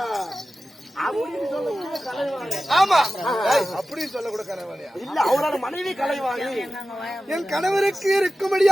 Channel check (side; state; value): both; normal; correlation 0.94